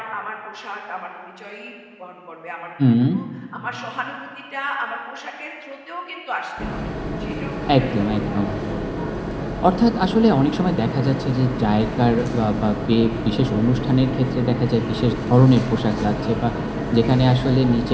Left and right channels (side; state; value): both; identical; correlation 1.00